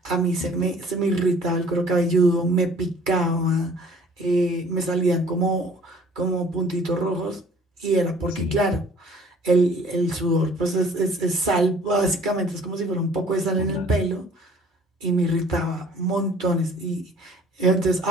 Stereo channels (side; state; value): both; normal; correlation 0.53